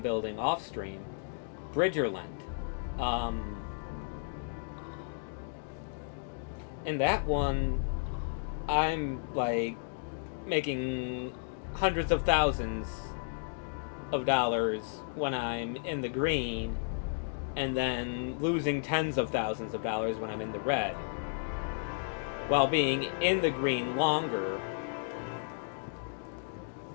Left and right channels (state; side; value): silent; right; digital silence